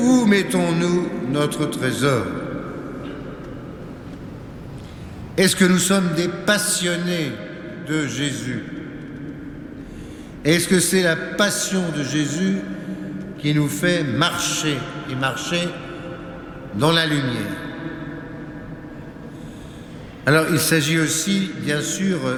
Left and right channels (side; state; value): both; identical; correlation 1.00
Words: mettons-nous notre trésor? Est-ce que nous sommes des passionnés de Jésus? Est-ce que c'est la passion de Jésus qui nous fait marcher et marcher dans la lumière? Alors il s'agit aussi, bien sûr,